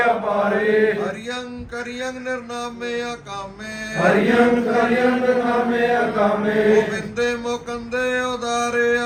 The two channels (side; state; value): both; identical; correlation 1.00